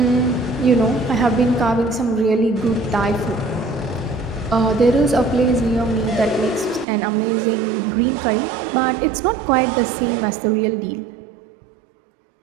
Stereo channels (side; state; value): left; drops out; at 6.9 s